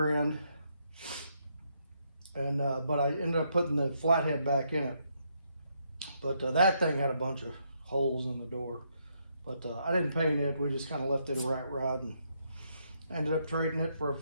end, and but I ended up putting the flathead back in it. But that thing had a bunch of holes in the door, but I didn't paint it. We just kind of left it a rat rod and ended up trading it for a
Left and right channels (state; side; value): inverted; both; correlation -0.76